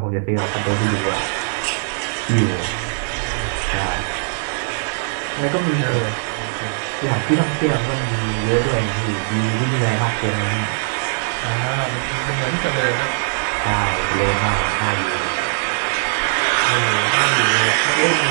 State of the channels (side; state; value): left; silent; 66 dB below the other